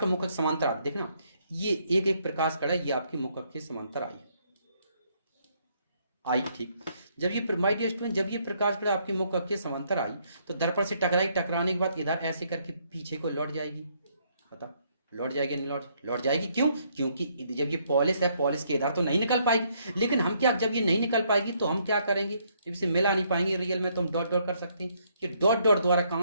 मुख समांतर आता, देखना ये एक प्रकाश कण है, ये आपकी मुख के समांतर आई ठीक। जब ये जब ये प्रकाश कण आपके मुख के समांतर आई तो दर्पण से टकराने के बाद इधर ऐसे करके पीछे को लौट जाएगी। पता लौट जाएगी? नहीं लौट जाएगी। क्यों? क्योंकि जब ये पॉलिश है, पॉलिश के इधर तो नहीं निकल पाएगी। लेकिन हम क्या, जब ये नहीं निकल पाएगी तो हम क्या करेंगे? जब इसे मिला नहीं पाएंगे रियल में तो हम डॉट डॉट कर सकते हैं। कि डॉट डॉट द्वारा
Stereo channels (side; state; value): both; inverted; correlation -0.70